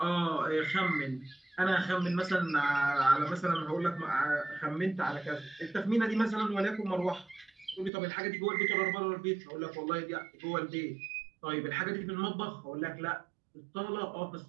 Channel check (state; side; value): drops out; left; at 7.9 s